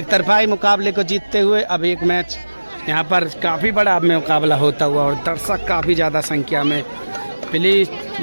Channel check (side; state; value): both; inverted; correlation -1.00